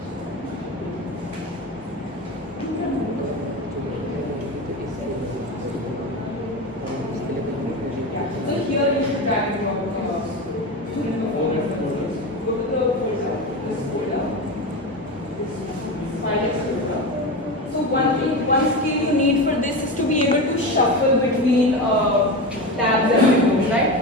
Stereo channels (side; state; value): both; normal; correlation 0.22